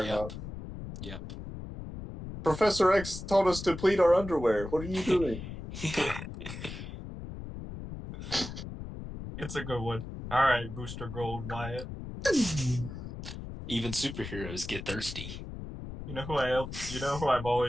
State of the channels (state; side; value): noise; left; rumble, 9 dB below the sound